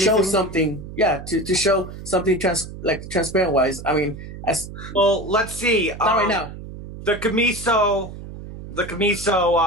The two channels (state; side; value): noise; right; hum, 12 dB below the sound